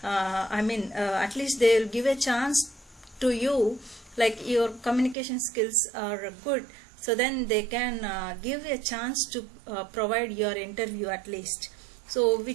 At least they will give a chance to you, like your communication skills are good, so then they can give a chance to provide your interview at least. So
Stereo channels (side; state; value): left; drops out; at 5.2 s